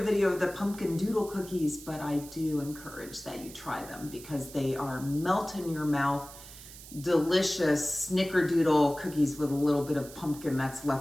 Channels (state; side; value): noise; right; hiss, 16 dB below the sound